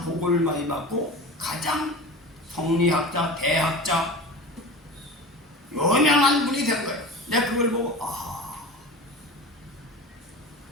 복을 많이 받고 가장 성리학자, 대학자 유명한 분이 된 거예요. 내가 그걸 보고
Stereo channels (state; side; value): normal; both; correlation 0.32